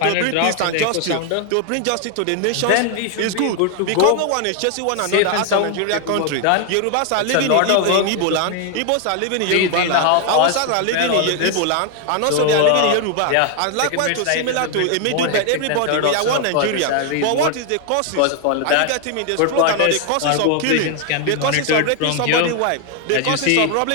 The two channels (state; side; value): different; both; correlation 0.00